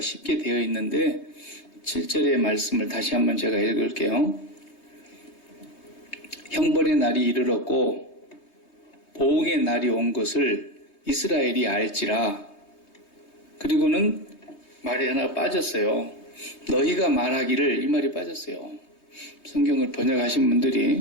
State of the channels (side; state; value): right; late; 3.2 ms